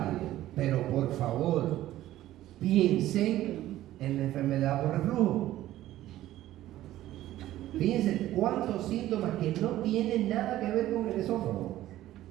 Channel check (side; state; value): left; quieter; 14.3 dB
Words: pero por favor, piensen en la enfermedad por reflujo. Fíjense cuántos síntomas que no tienen nada que ver con el esófago.